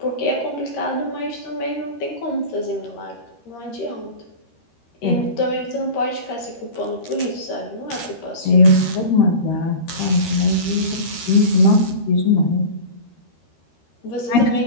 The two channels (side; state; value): right; late; 13 ms